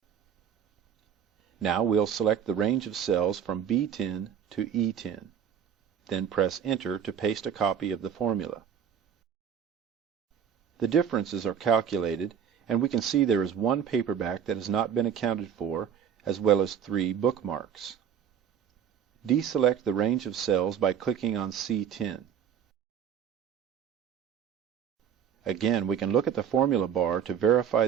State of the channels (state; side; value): quieter; left; 8.4 dB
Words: Now we'll select the range of cells from B10 to E10. Then press Enter to paste a copy of the formula. The differences are calculated, and we can see there is one paperback that has not been accounted for, as well as 3 bookmarks. Deselect the range of cells by clicking on C10. Again, we can look at the formula bar to verify